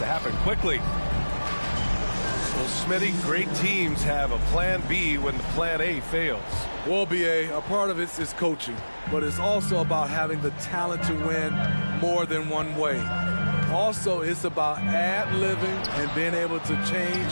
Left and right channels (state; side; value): inverted; both; correlation -1.00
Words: happen quickly. Well, Smitty, great teams have a plan B when the plan A fails. Well, BA, a part of it is coaching, but it's also about having the talent to win more than one way. Also, it's about ad-libbing and being able to